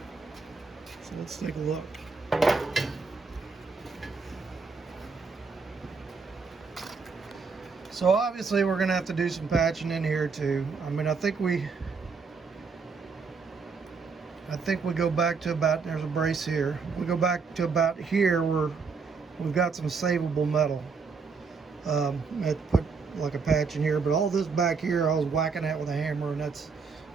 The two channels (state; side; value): quieter; left; 4.9 dB